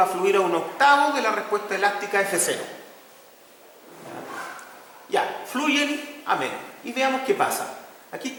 a fluir a un octavo de la respuesta elástica F0. Ya, fluyen a menos. Y veamos qué pasa. Aquí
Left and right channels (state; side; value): identical; both; correlation 1.00